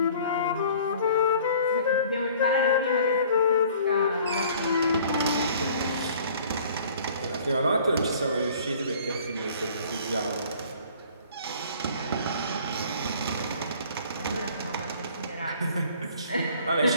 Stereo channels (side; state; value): both; inverted; correlation -0.52